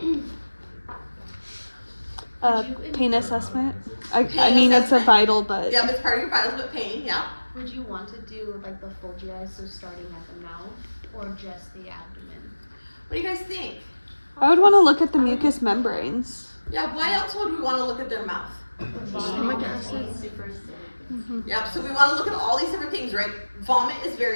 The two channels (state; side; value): inverted; both; correlation -1.00